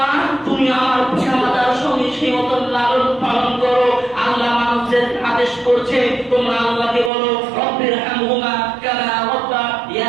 তুমি আমার পিতামাতার সঙ্গে সেই মতন লালন পালন করো। আল্লাহ মানুষদের আদেশ করছে তোমরা আল্লাহকে বলো রব্বিরহামহুমা কামা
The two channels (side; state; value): left; drops out; at 7.1 s